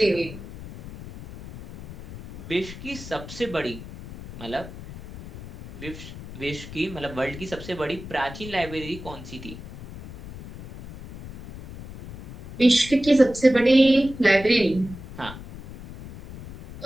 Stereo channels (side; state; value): left; noise; rumble, 14 dB below the sound